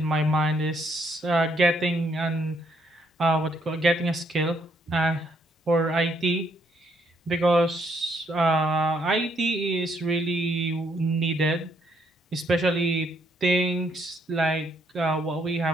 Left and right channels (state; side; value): normal; both; correlation 0.71